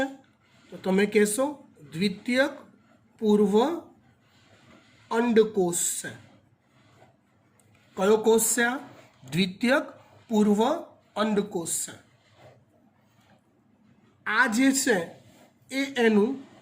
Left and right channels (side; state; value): both; identical; correlation 1.00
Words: તો તમે કહેશો દ્વિતીયક પૂર્વ અંડકોષ છે. કયો કોષ છે આ? દ્વિતીયક પૂર્વ અંડકોષ છે. આ જે છે એ એનું